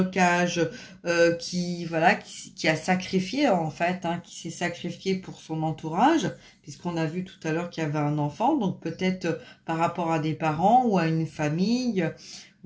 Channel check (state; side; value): identical; both; correlation 1.00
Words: voilà, qui a sacrifié en fait, hein, qui s'est sacrifié pour son entourage, puisqu'on a vu tout à l'heure qu'il y avait un enfant, donc peut-être par rapport à des parents ou à une famille,